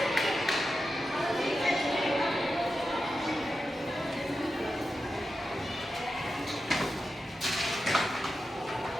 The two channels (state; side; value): normal; both; correlation 0.90